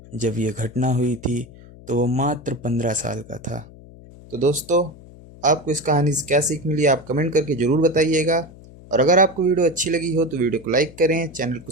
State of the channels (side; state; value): left; noise; hum, 20 dB below the sound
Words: जब ये घटना हुई थी तो वो मात्र 15 साल का था। तो दोस्तों, आपको इस कहानी से क्या सीख मिली आप कमेंट करके ज़रूर बताइएगा। और अगर आपको वीडियो अच्छी लगी हो तो वीडियो को लाइक करें, चैनल को